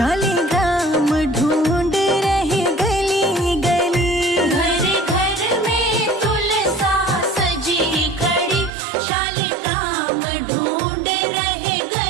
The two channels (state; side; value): drops out; left; at 8.7 s